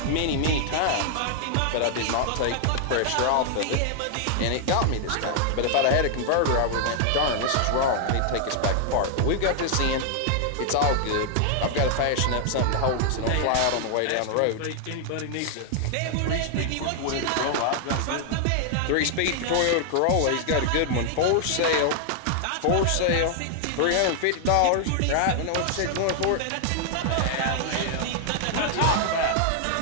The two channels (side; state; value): both; different; correlation 0.00